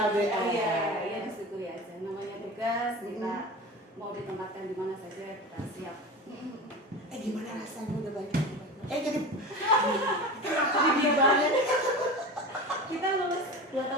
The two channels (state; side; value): normal; both; correlation 0.30